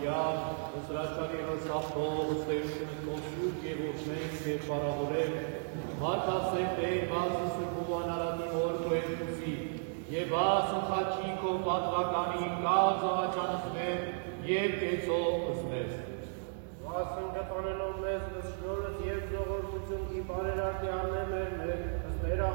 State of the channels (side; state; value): left; silent; digital silence